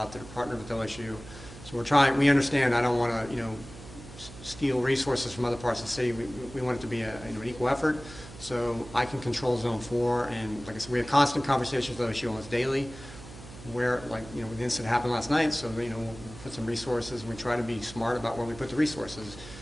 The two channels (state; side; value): noise; right; hum, 16 dB below the sound